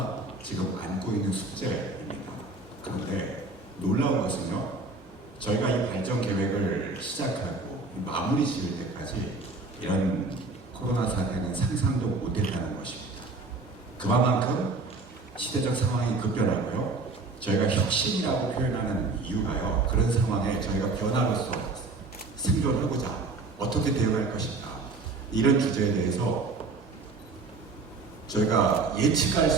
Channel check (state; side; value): quieter; left; 3.7 dB